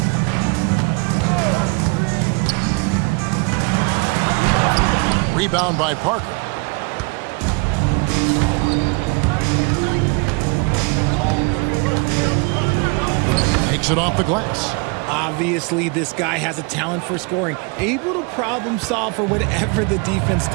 Rebound by Parker. Takes it off the glass. Obviously, this guy has a talent for scoring, able to problem solve for whatever the defense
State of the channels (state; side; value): quieter; left; 31.8 dB